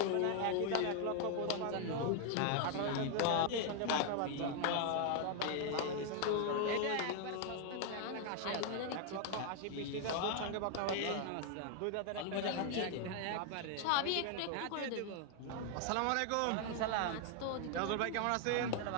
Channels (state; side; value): different; both; correlation 0.00